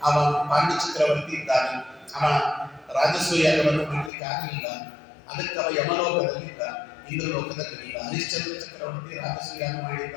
ಅವ ಪಾಂಡ್ಯ ಚಕ್ರವರ್ತಿ ಇದ್ದಾನೆ, ಅವ ರಾಜಸೂಯಾಗವನ್ನು ಮಾಡಲಿಕ್ಕೆ ಆಗಲಿಲ್ಲ. ಅದಕ್ಕೆ ಅವ ಯಮಲೋಕದಲ್ಲಿದ್ದ, ಇಂದ್ರಲೋಕದಲ್ಲಿಲ್ಲ. ಹರಿಶ್ಚಂದ್ರ ಚಕ್ರವರ್ತಿ ರಾಜಸೂಯಾಗ ಮಾಡಿದ್ದ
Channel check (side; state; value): right; drops out; at 4.1 s